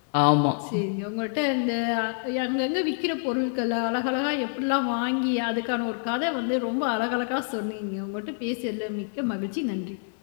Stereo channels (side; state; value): right; silent; 60 dB below the other